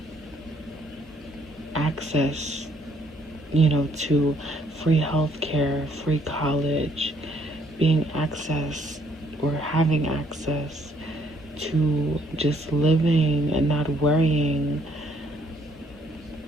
access, to free healthcare, free college, being access or having access to just living and not worrying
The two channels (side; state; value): both; normal; correlation 0.67